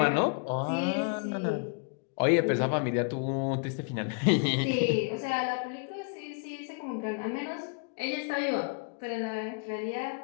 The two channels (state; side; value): quieter; right; 36.7 dB